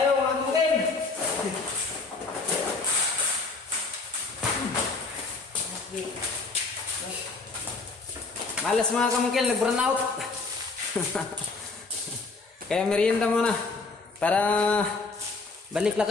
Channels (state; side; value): quieter; right; 4.0 dB